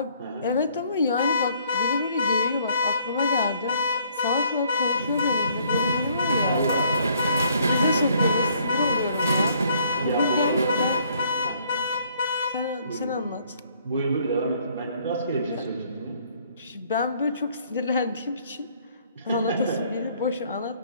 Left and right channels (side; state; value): both; inverted; correlation -0.64